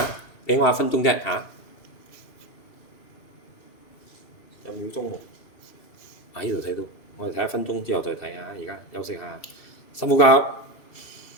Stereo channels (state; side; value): late; right; 2.8 ms